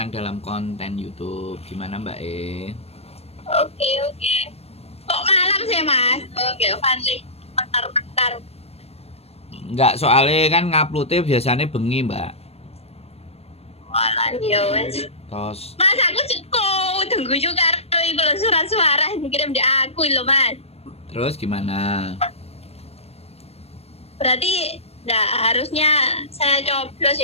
dalam konten YouTube. Gimana Mbak E? Oke, oke. Kok malam sih, Mas? Oke, Fanny. Bentar-bentar. Enggak, soalnya kan nguploadnya biasanya bengi Mbak. Walah, ya wes. Terus, Mas, aku cukup tunggu juga itu loh surat suara yang dikirim di aku loh, Mas. terus gimana? Berarti nggak harusnya saya coblos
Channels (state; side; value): late; right; 0.29 ms